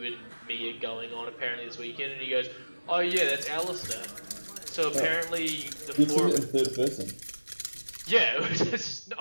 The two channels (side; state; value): both; inverted; correlation -1.00